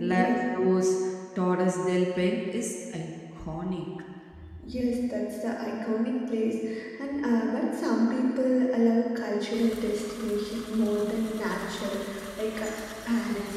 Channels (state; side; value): identical; both; correlation 1.00